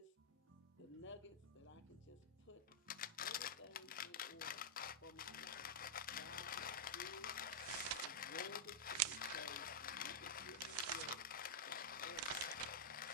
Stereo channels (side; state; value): both; normal; correlation -0.08